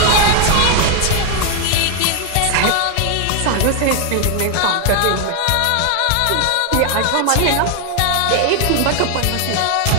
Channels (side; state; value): both; different; correlation 0.00